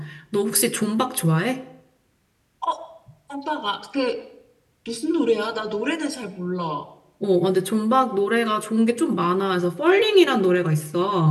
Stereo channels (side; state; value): both; identical; correlation 1.00